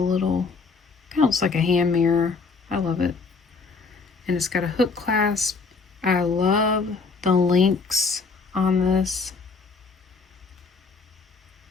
little, kind of looks like a hand mirror. I love it. And it's got a hook clasp. I love the links on this.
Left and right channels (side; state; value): right; quieter; 4.5 dB